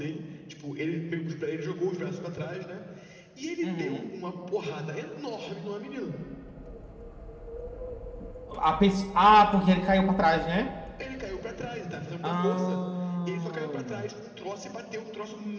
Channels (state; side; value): identical; both; correlation 1.00